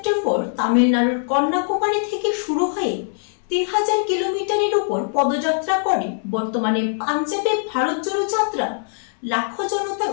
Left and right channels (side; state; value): right; silent; 65 dB below the other